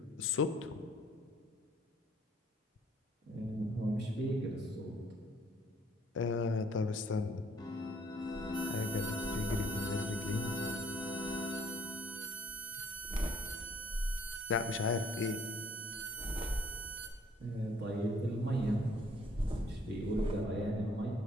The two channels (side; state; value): both; normal; correlation 0.62